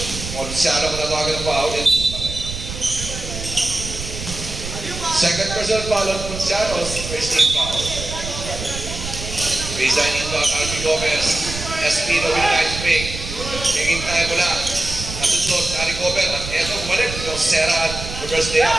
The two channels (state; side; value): noise; right; rumble, 8 dB below the sound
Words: Ponciano patawagan ng foul. Second personal foul on Ponciano's first team foul. Baseline inbound, Albi Gomez. Espino with a nice pick. Hingin tayo mula. Nasusunod, na-recover. At eto, bumalik. Josera, reverse layup.